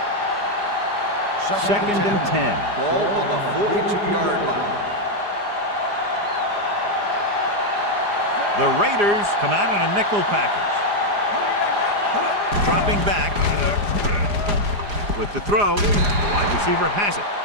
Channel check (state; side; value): late; left; 4.9 ms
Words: Second and 10. Ball on the 42-yard line. The Raiders come out in a nickel package. Dropping back with the throw. The wide receiver has it.